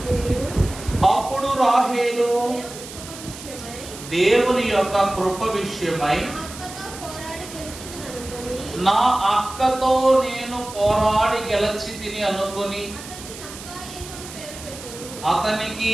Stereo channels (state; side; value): noise; right; hiss, 13 dB below the sound